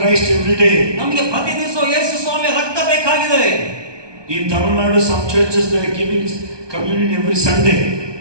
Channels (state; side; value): late; left; 1.2 ms